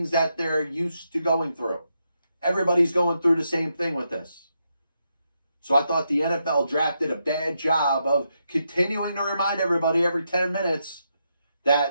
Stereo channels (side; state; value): both; inverted; correlation -0.82